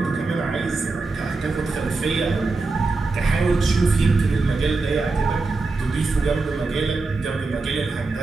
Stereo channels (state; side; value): quieter; left; 3.7 dB